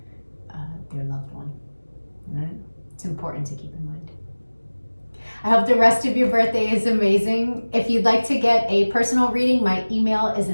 their loved one, right? It's important to keep in mind. I hope the rest of your birthday is amazing. If you'd like to get a personal reading, my email is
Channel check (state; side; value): inverted; both; correlation -1.00